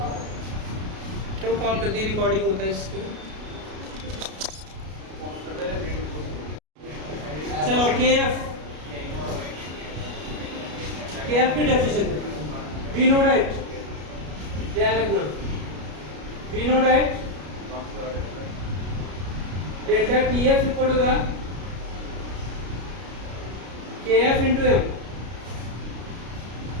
क्यों कॉल कर दी रिकॉर्डिंग होता है इसको। चलो KF की डेफिनेशन वी नो राइट ध्यान रखना we know right delta TF equal to KF into M।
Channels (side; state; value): left; late; 33 ms